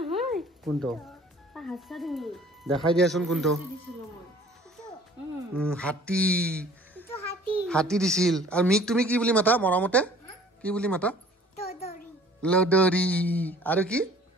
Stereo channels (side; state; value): both; normal; correlation 0.51